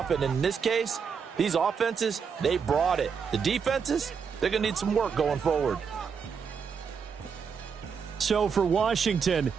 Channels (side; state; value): left; quieter; 6.3 dB